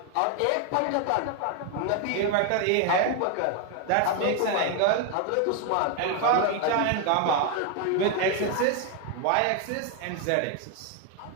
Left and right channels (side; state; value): both; different; correlation 0.01